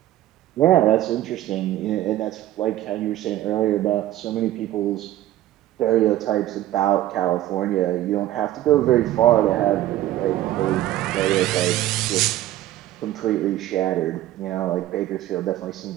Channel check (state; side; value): quieter; left; 14.1 dB